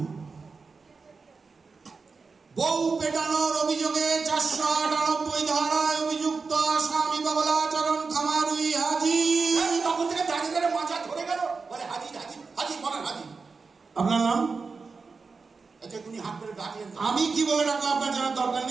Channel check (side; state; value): left; quieter; 4.6 dB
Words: বউ পেটানোর অভিযোগে 498 ধারায় অভিযুক্ত আসামি বাবলাচরণ খামারুই হাজির। তখন থেকে দাঁড়িয়ে দাঁড়িয়ে মাথা ধরে গেল, বলে হাজির হাজির হাজির, বলেন হাজির। আপনার নাম? আচ্ছা, উনি হাত করে ডাকলেন। আমি কি বলে ডাকবো আপনার জানার দরকার